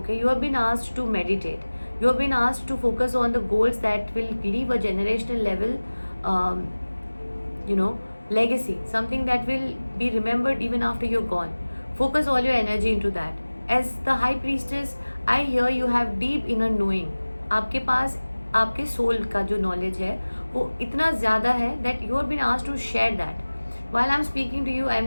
You have been asked to meditate, you have been asked to focus on the goals that will leave a generational level legacy, something that will be remembered even after you're gone. Focus all your energy into that. As the High Priestess, I hear you have deep inner knowing. आपके पास आपके soul का जो knowledge है वो इतना ज़्यादा है that you have been asked to share that. While I'm speaking to you, I'm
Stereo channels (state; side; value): inverted; both; correlation -1.00